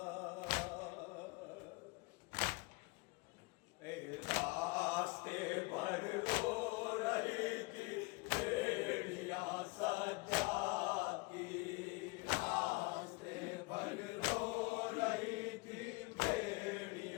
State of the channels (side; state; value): right; quieter; 26.3 dB